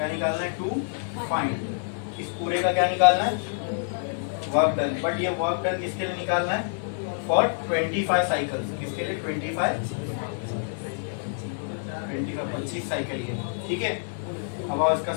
निकालना है? To find. इस पूरे का क्या निकालना है? Work done. बट ये वर्क डन किसके लिए निकालना है? For 25 cycles. किसके लिए? 25 साइकिल ये। ठीक है, अब आओ इसका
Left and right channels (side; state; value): right; silent; 60 dB below the other